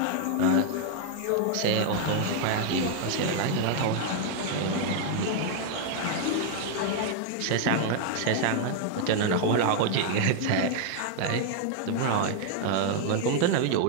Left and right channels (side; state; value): both; different; correlation 0.00